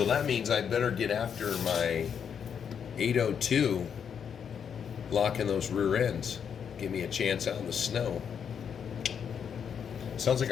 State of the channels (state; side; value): quieter; right; 7.5 dB